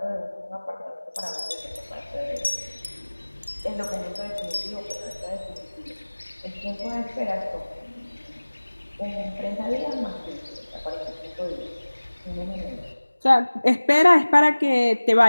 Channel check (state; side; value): inverted; both; correlation -1.00